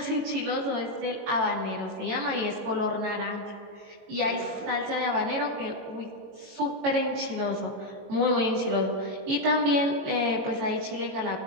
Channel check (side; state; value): left; late; 22 ms